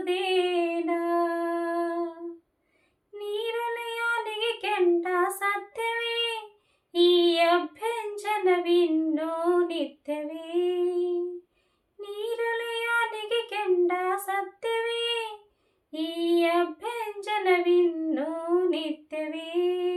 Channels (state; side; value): identical; both; correlation 1.00